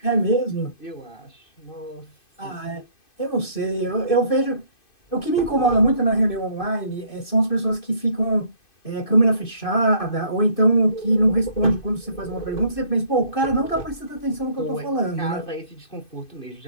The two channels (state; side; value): late; right; 2.5 ms